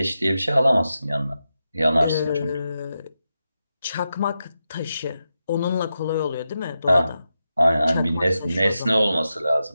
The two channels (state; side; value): inverted; both; correlation -0.89